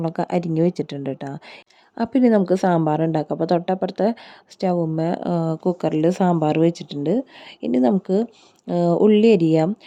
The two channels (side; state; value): both; identical; correlation 1.00